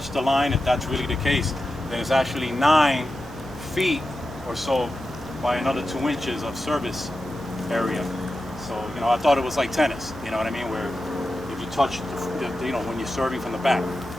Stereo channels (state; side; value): noise; right; hum, 16 dB below the sound